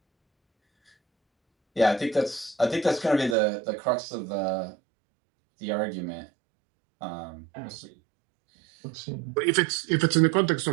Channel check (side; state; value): left; drops out; at 3.4 s